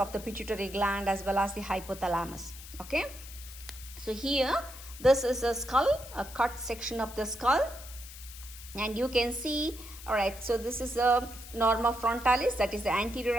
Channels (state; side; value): noise; left; hiss, 15 dB below the sound